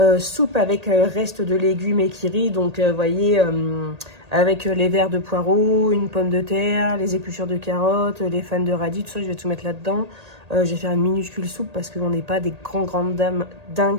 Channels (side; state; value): left; late; 1.8 ms